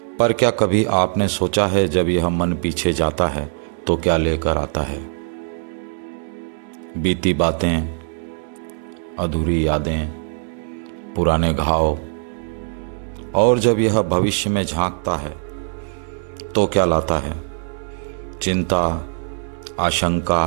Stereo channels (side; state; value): left; silent; digital silence